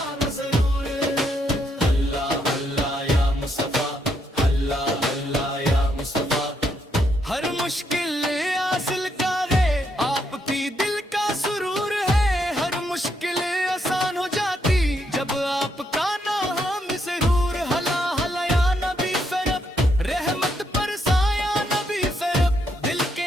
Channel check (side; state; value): both; normal; correlation 0.77